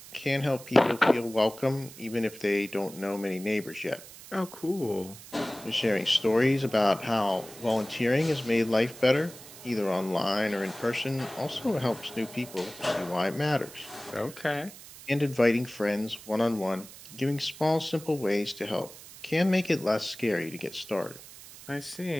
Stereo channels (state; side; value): noise; right; hiss, 17 dB below the sound